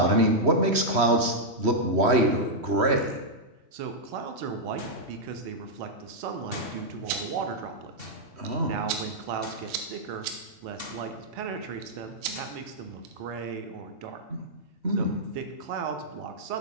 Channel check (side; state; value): left; late; 3.1 ms